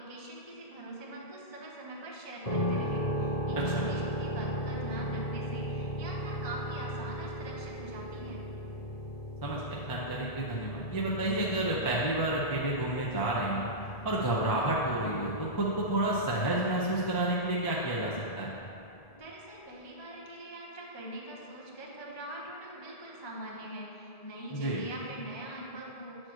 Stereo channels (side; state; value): right; late; 1.7 ms